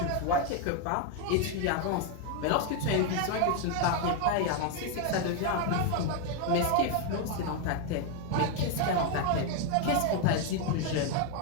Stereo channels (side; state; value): both; different; correlation 0.01